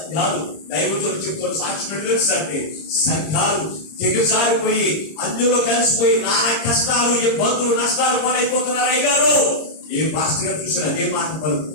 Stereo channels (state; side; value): late; right; 26 ms